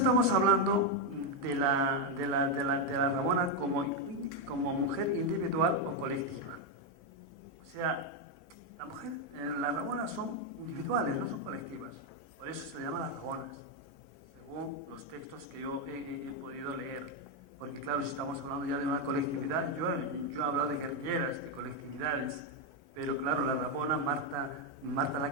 hablando de la Ramona como mujer individual o colectiva. O sea, las Ramonas son individuales, no son colectivas. Por eso se llaman las Ramonas, según los textos que yo he podido leer. Porque claro, si estamos hablando ya de una colectividad, yo he hablado de guerrilleras, de colectividades. Pero claro, la Ramona, Marta la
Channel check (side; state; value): both; normal; correlation 0.04